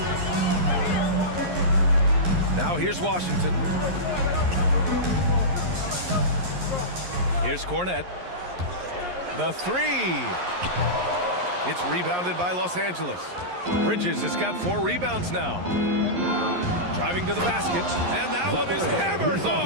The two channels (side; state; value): left; late; 11 ms